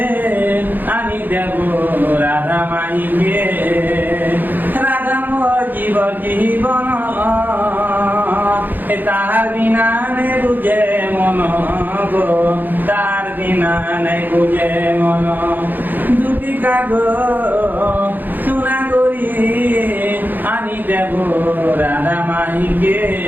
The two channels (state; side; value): late; left; 0.088 ms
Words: আনি দেব রাধা মাইকে রাধা মোর জীবন তাহার বিনা নে বুঝে মন গো তার বিনা নাই বুঝে মন দুটি কাগো সোনা করি আনি দেব রাধা মাইকে